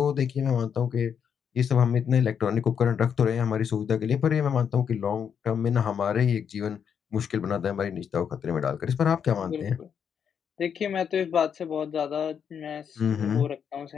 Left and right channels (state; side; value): quieter; right; 7.6 dB